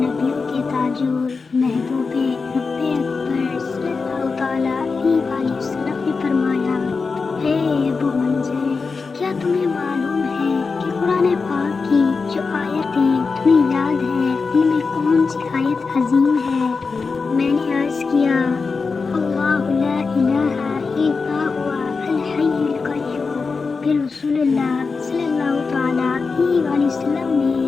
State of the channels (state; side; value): quieter; right; 4.6 dB